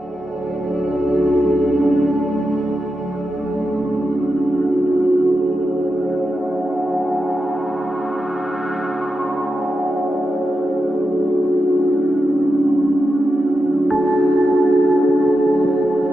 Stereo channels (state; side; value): normal; both; correlation 0.88